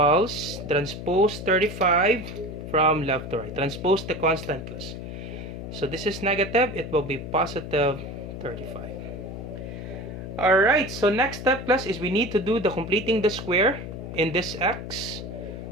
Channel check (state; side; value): noise; left; hum, 8 dB below the sound